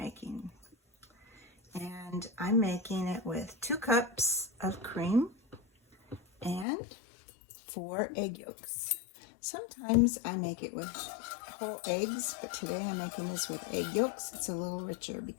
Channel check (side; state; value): right; drops out; at 6.7 s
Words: And I'm making it with 2 cups of cream and 4 egg yolks. Sometimes I make it with whole eggs, but today I'm making this with egg yolks. It's a little richer